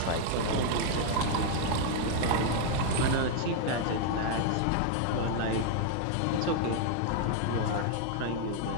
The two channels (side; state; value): both; different; correlation 0.00